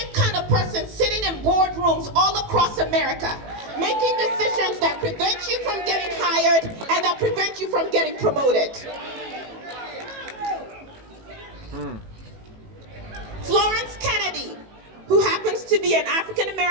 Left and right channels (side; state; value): left; late; 18 ms